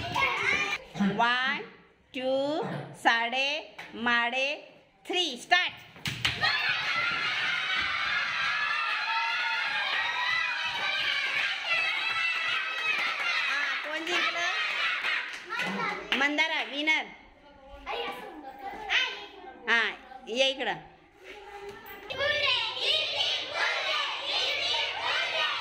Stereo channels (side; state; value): both; identical; correlation 1.00